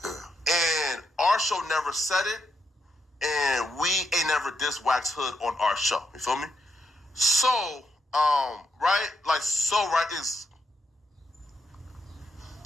And our show never said it, and we ain't never dissed Wack's Hood on our show. You feel me? So right? Like, so, right, is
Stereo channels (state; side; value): normal; both; correlation 0.80